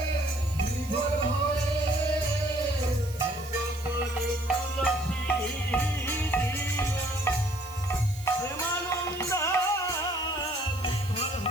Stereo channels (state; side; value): noise; right; hiss, 17 dB below the sound